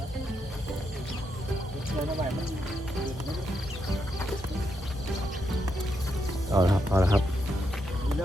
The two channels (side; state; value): both; normal; correlation 0.81